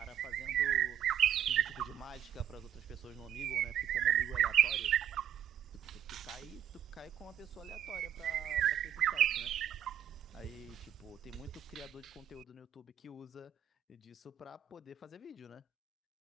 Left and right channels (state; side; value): quieter; left; 9.9 dB